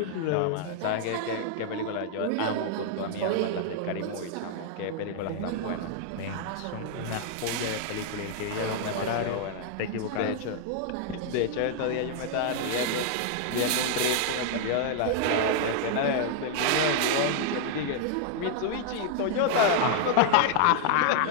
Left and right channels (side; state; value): both; different; correlation -0.01